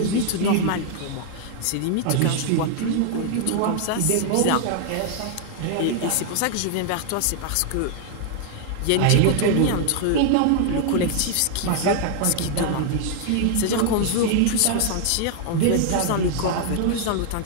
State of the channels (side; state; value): both; different; correlation 0.00